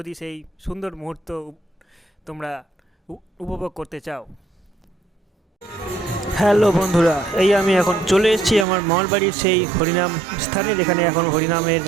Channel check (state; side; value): drops out; left; at 8.7 s